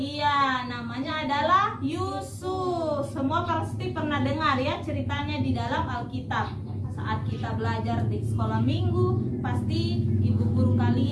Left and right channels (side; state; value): both; identical; correlation 1.00